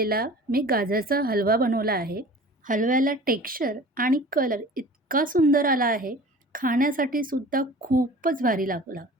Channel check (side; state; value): both; normal; correlation 0.43